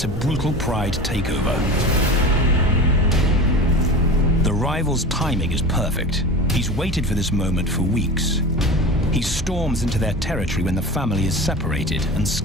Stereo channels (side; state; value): both; normal; correlation 0.31